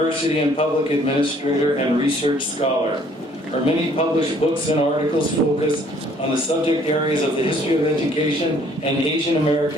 and public administrator, and research scholar. Her many published books and articles focus on the subject areas of the history of education and Asian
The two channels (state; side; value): normal; both; correlation 0.60